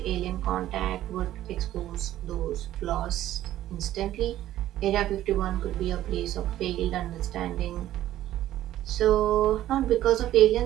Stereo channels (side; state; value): left; quieter; 13.4 dB